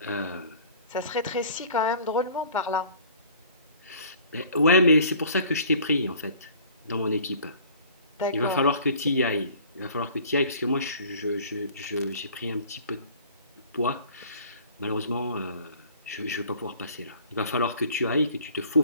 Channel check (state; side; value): inverted; both; correlation -0.50